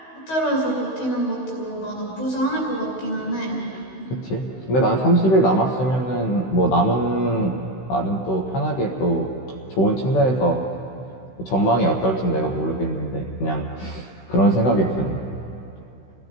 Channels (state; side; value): late; right; 16 ms